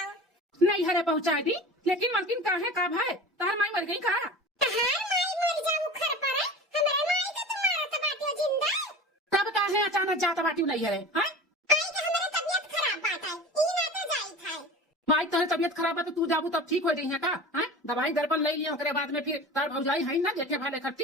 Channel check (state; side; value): normal; both; correlation 0.35